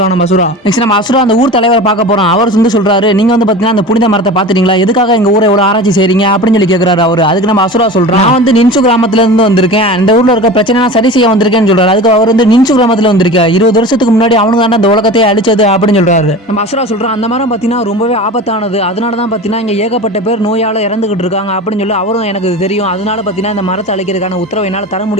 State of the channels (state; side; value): normal; both; correlation 0.33